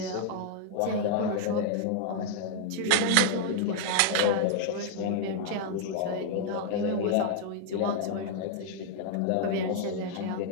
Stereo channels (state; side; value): different; both; correlation 0.00